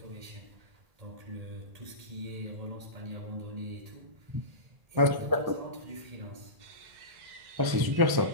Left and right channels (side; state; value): left; late; 1.1 ms